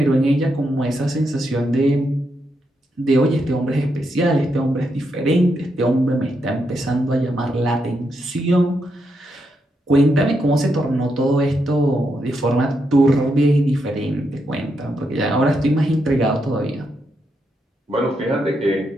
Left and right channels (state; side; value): normal; both; correlation 0.81